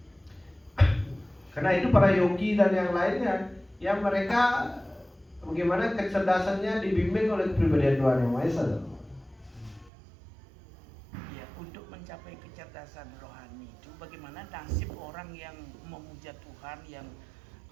Karena itu para yogi dan yang lainnya yang mereka bagaimana kecerdasannya dibimbing oleh kepribadian Tuhan yang Maha Esa. Ya, untuk mencapai kecerdasan rohani itu bagaimana nasib orang yang memuja Tuhan yang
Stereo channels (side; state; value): left; drops out; at 9.9 s